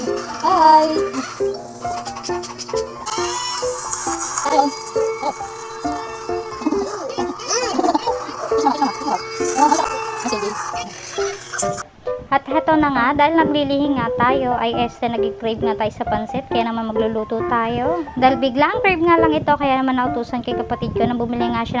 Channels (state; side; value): identical; both; correlation 1.00